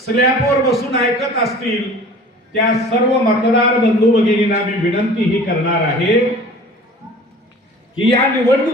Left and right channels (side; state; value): both; normal; correlation 0.45